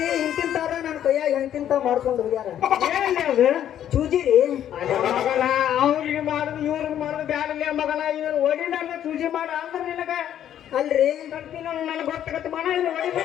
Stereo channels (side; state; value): right; quieter; 10.6 dB